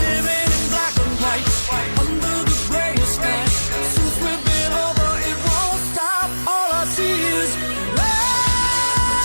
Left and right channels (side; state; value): both; inverted; correlation -1.00